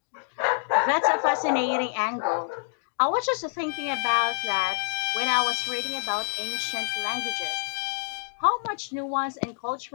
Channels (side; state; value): right; silent; digital silence